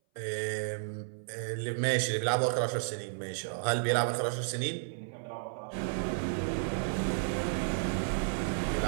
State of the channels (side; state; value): left; silent; 56 dB below the other